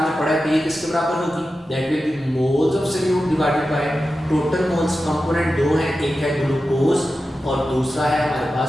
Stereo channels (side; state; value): both; normal; correlation 0.92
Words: पढ़ा है कि ये किसके बराबर होगी, that will be moles of solute divided by total moles. Component दो हैं, एक है ग्लूकोज और दूसरा है हमारे